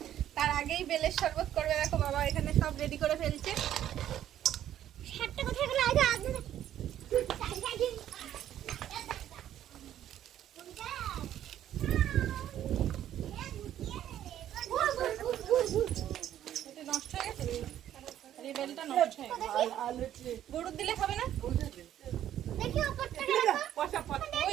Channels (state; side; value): quieter; left; 11.4 dB